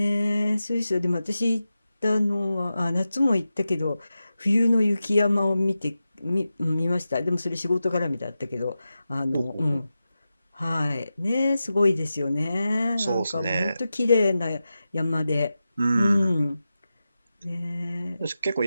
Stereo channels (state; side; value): inverted; both; correlation -0.92